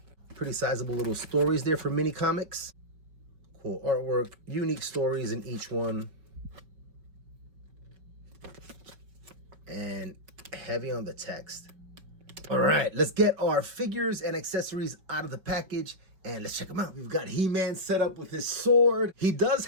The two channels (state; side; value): late; left; 5.3 ms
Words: Pretty sizable little stories there for mini comics. Cool artwork. Unique stories in each one. And heavy on the text. All right, let's get our figures and accessories out of the package and let's check them out. We've got He-Man set up with his sword. He does